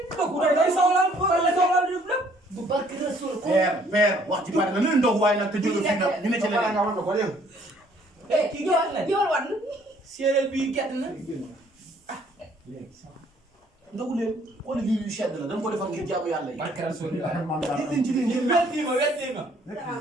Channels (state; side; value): normal; both; correlation 0.61